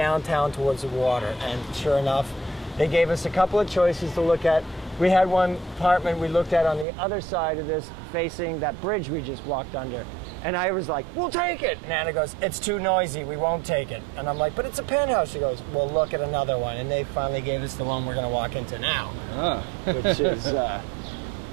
towards the water. And sure enough, they gave us a couple of choices to look at. We had one apartment we looked at on the other side of this, facing that bridge we just walked under. And I was like, we'll take it. And Anna goes, it's too noisy, we won't take it. And I'm like, but it's a penthouse. She goes, well, look at another one. And they finally gave us the one we're going to walk into now, which is,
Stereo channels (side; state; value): left; drops out; at 6.9 s